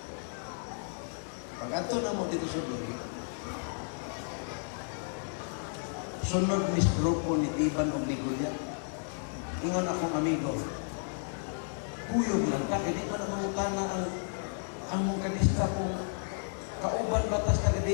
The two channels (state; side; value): silent; right; digital silence